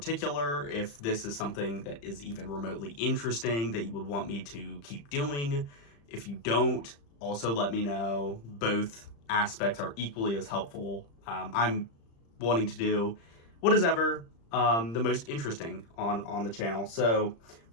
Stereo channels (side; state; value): right; late; 35 ms